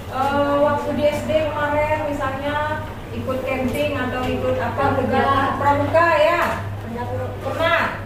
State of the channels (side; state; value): both; identical; correlation 1.00